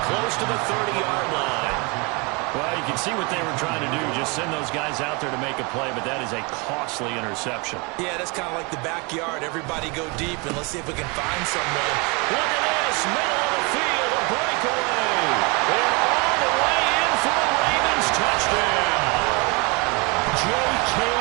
close to the 30-yard line. Well, you can see what they were trying to do. Just send those guys out there to make a play, but that is a costly interception. Yeah, that's kind of like the backyard. Everybody go deep, and let's see if we can find someone. Look at this. Middle of the field. A breakaway. And all the way in for a Ravens touchdown. J.K.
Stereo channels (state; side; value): quieter; left; 29.6 dB